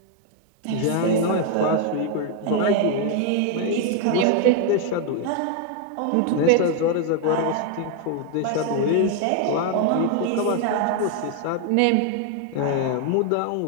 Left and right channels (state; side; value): different; both; correlation 0.01